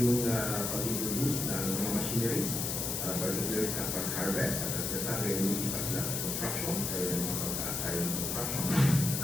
yung pag-introduce ng mga machineries, particularly sa pag-harvest, at sinasabi yung ipas sila sa construction, kaya yung mga pagtaas tayo ng construction.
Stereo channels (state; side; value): noise; left; hiss, 1 dB below the sound